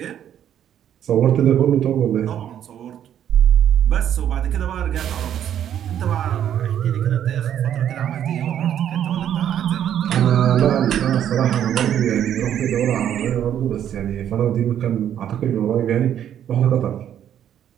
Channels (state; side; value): quieter; left; 10.1 dB